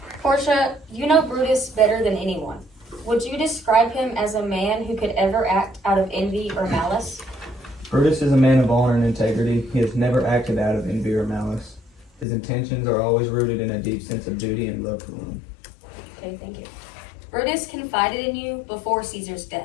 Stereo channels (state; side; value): drops out; right; at 12.2 s